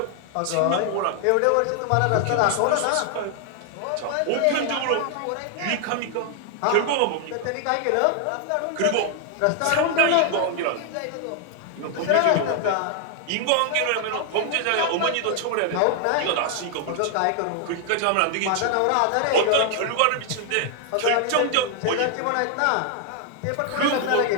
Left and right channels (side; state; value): both; different; correlation 0.00